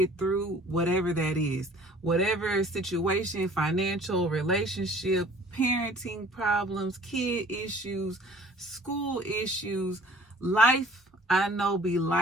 through whatever that is. Whatever situation, financial, relationship, parenting problems, kid issues, school issues, life, I know be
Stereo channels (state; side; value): normal; both; correlation 0.52